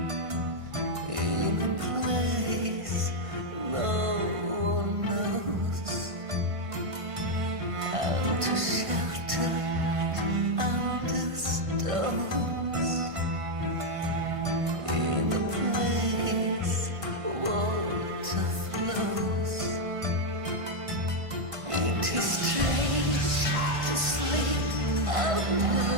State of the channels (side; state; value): left; late; 1.5 ms